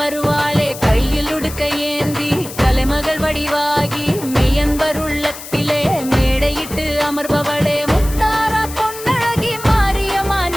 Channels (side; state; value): left; noise; hiss, 13 dB below the sound